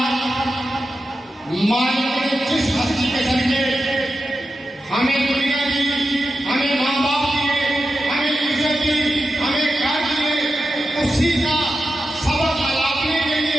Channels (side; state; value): both; normal; correlation 0.90